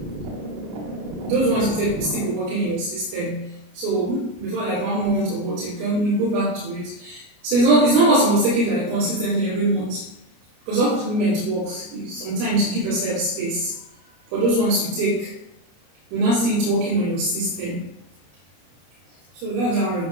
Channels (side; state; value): left; late; 33 ms